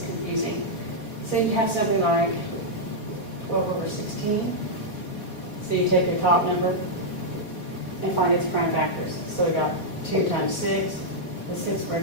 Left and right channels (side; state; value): right; late; 3.9 ms